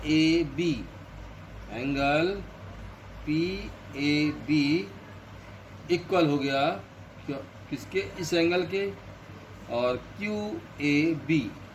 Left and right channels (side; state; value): both; identical; correlation 1.00